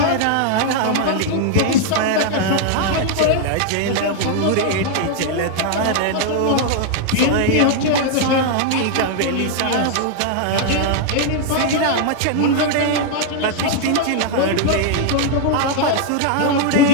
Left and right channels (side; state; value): both; different; correlation 0.00